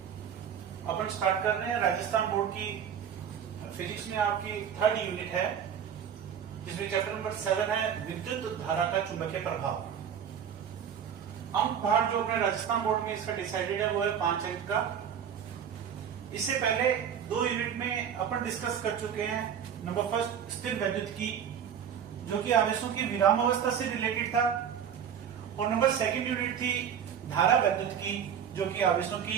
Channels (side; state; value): left; quieter; 8.3 dB